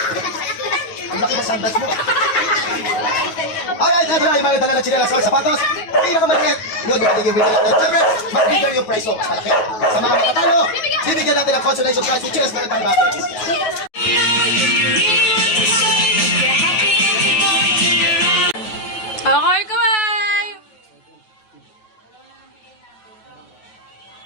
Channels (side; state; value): right; late; 9.3 ms